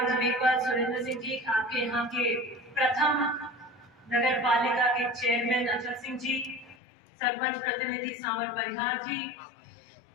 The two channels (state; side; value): drops out; right; at 6.8 s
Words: जी मेघवाल, सुरेंद्र सिंह जी, आपके यहाँ के प्रथम नगर पालिका के चेयरमैन अचल सिंह जी, सरपंच प्रतिनिधि सांवर परिहार जी,